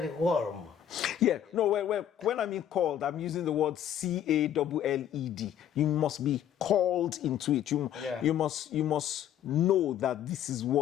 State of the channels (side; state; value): right; quieter; 10.2 dB